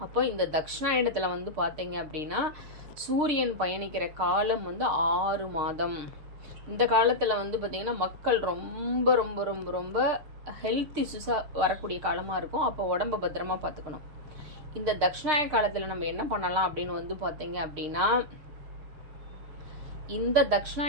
அப்போ இந்த தக்ஷணாயணத்துல பாத்தீங்க அப்படின்னா சூரியன் பயணிக்கிற காலம் 6 மாதம். இந்த காலத்துல பாத்தீங்கன்னா மக்கள் ரொம்ப ரொம்ப ரொம்ப ரொம்ப ஹெல்த் இஷ்யூஸா வரக்கூடிய காலமா இருக்கும். அப்போ உடம்ப பத்திரமா பாத்துக்கணும். இந்த தக்ஷணாயன காலத்துல நம்ம என்ன பண்ணலாம் அப்படின்னு பாத்தீங்க அப்படின்னா இந்த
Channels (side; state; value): left; late; 6.6 ms